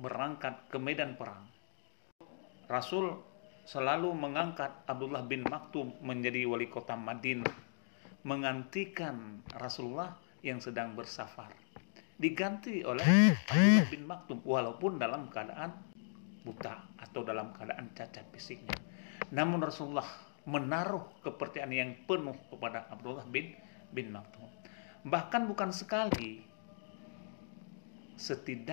berangkat ke medan perang, Rasul selalu mengangkat Abdullah bin Maktum menjadi wali kota Madinah, menggantikan Rasulullah yang sedang bersafar. Diganti oleh Abdullah bin Maktum walaupun dalam keadaan buta atau dalam keadaan cacat fisiknya. Namun Rasulullah menaruh kepercayaan yang penuh kepada Abdullah bin Maktum. Bahkan bukan sekali,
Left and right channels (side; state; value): right; silent; digital silence